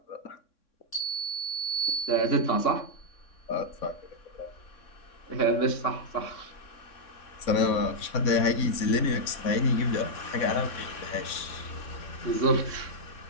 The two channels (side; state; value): right; late; 3.6 ms